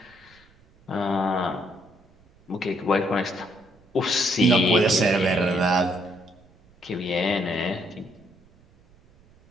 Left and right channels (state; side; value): noise; right; rumble, 30 dB below the sound